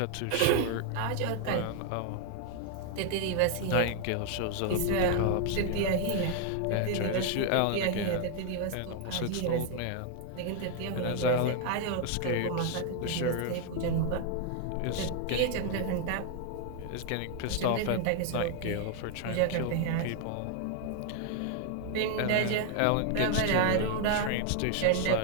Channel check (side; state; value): both; different; correlation 0.00